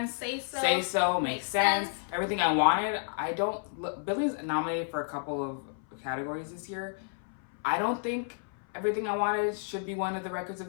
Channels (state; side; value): silent; right; 57 dB below the other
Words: Say So, makes sense. Everything I Wanted. Billy's nominated for a couple of categories this year. I don't think Everything I Wanted should be one of the records